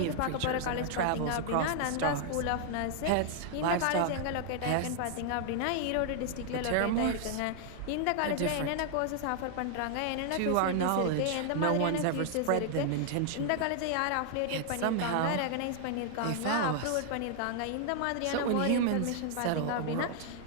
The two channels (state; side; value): different; both; correlation 0.00